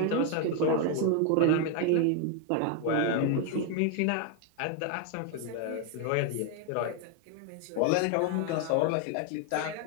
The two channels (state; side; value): different; both; correlation 0.01